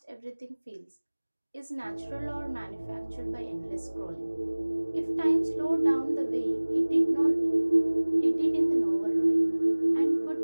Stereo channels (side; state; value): both; inverted; correlation -1.00